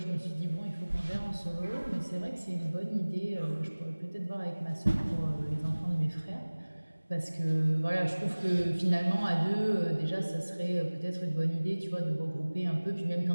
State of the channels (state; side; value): inverted; both; correlation -1.00